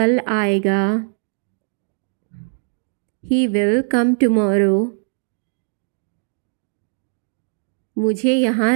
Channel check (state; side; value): silent; left; digital silence